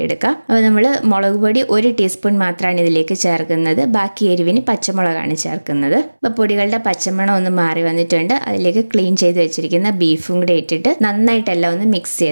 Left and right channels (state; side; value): inverted; both; correlation -1.00